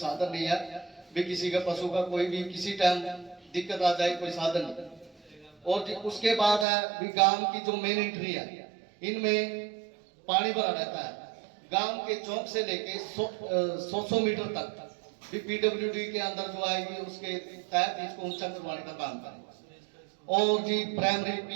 नहीं है भी किसी का पशु का कोई भी किसी टाइम दिक्कत आ जाए कोई साधन नहीं। और उसके बाद है भी गांव की जो मेन एंट्री है इनमें पानी भरा रहता है। गांव के चौक से लेके 100 मीटर तक भी पीडब्ल्यूडी के अंदर जो आएगी उसके तहत इसको ऊंचा करवाने का काम करें और जी प्राइमरी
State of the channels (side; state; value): left; drops out; at 6.7 s